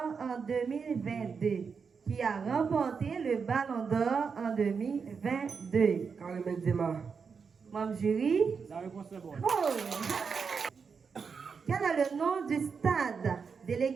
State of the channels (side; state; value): left; quieter; 5.7 dB